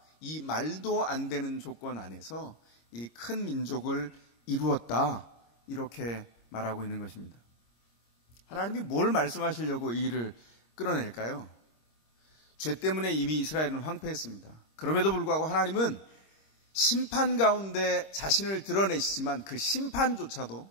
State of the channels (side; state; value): right; late; 26 ms